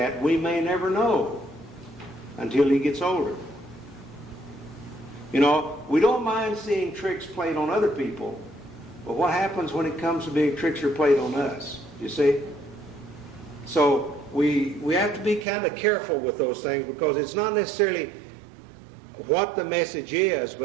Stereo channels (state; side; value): drops out; left; at 15.5 s